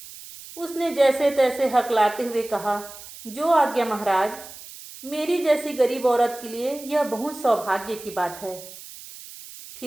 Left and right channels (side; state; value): right; noise; hiss, 16 dB below the sound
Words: उसने जैसे तैसे हकलाते हुए कहा, जो आज्ञा महाराज। मेरी जैसी गरीब औरत के लिए यह बहुत सौभाग्य की बात है।